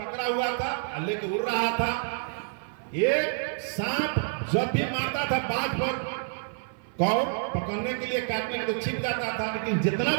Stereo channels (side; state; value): left; silent; 59 dB below the other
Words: हुआ था, लेके उड़ रहा था। एक सांप जब भी मारता था बाज पर, कौर पकड़ने के लिए, काटने के लिए छिप जाता था, लेकिन जितना